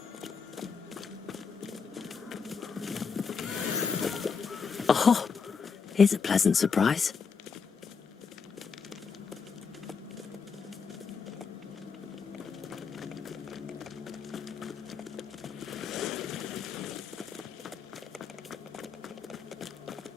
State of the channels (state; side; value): quieter; right; 5.7 dB